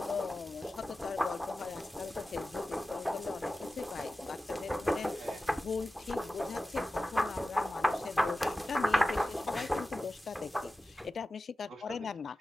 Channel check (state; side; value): normal; both; correlation 0.94